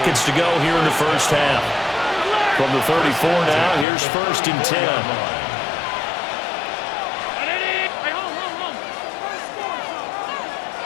to go here in the first half. From the 34 now, here's first and 10.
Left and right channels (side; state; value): right; drops out; at 3.9 s